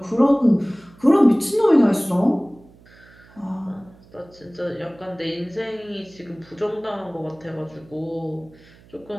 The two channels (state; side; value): noise; right; hum, 26 dB below the sound